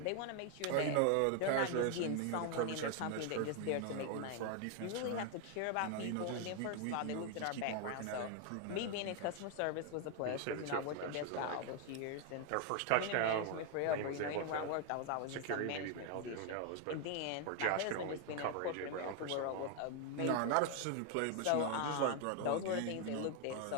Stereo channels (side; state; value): both; different; correlation 0.01